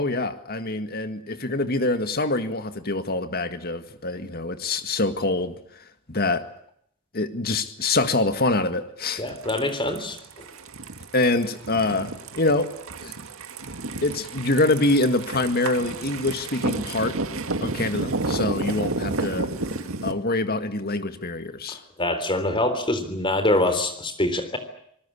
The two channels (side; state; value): both; normal; correlation 0.16